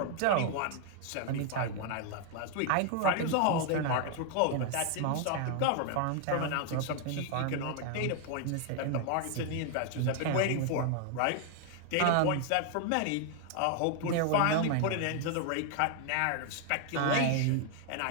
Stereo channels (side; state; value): both; different; correlation 0.00